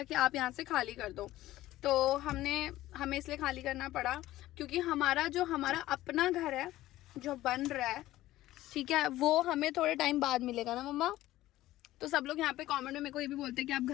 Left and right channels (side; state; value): right; quieter; 15.6 dB